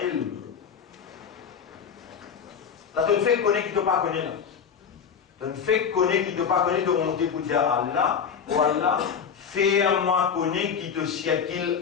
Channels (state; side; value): quieter; right; 7.0 dB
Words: ilm. Là, tu ne fais connaître qui ne te pas connaître. Tu ne fais connaître qui ne te pas connaître, de monter pour dire Allah, ou Allah, fais-moi connaître qui te siècle